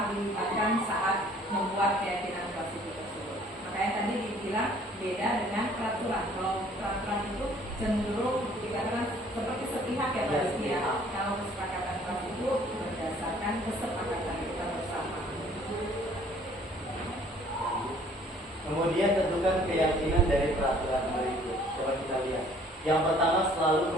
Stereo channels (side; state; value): both; normal; correlation 0.57